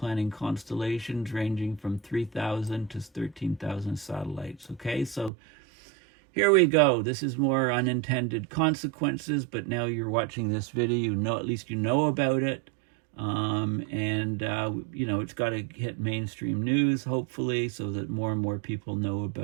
constellations ranging from 3,000 to 13,000 satellites. Okay, so here we go. This is more unintended consequences, but now you're watching this video, at least you know about it. It's got to hit mainstream news, hopefully, so that more and more people know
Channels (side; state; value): left; drops out; at 5.3 s